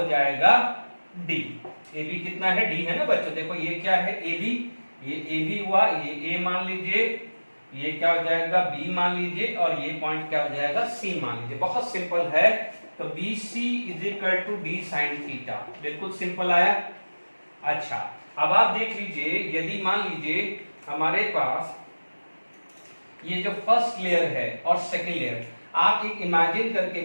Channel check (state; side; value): inverted; both; correlation -1.00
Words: जाएगा D। AB कितना है, D है ना बच्चों, देखो ये क्या है AB, ये AB हुआ, ये A मान लीजिए, ये क्या हो जाएगा B मान लीजिए, और ये पॉइंट क्या हो जाएगा C मान लीजिए। बहुत सिंपल है। तो BC is equal to D sine theta, बिल्कुल सिंपल आया। अच्छा, अब आप देख लीजिए, यदि मान लीजिए हमारे पास ये जो फर्स्ट लेयर है और सेकेंड लेयर, आप एक इमेजिन